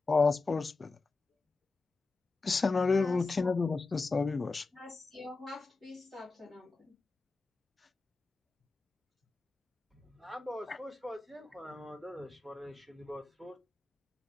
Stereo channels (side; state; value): right; quieter; 3.8 dB